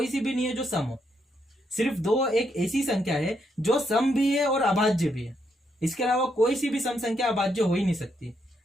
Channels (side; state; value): both; normal; correlation 0.77